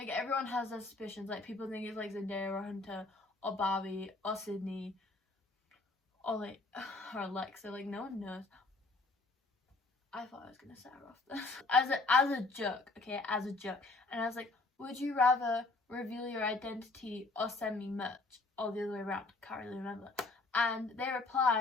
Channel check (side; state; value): right; quieter; 3.3 dB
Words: everyone has their suspicions, like people think it's like Zendaya or Hunter or Barbie or Sydney or like or Alexa, like no one knows. I thought I was gonna set her off this as a joke, okay, as a joke. And I was like, would you rather reveal your identity or send me merch? Or the other way around, can't really remember. And they